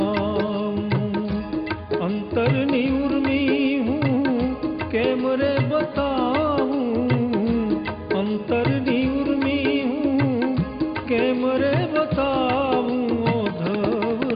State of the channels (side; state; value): both; identical; correlation 1.00